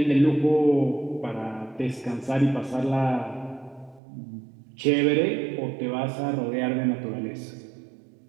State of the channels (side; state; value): left; drops out; at 4.0 s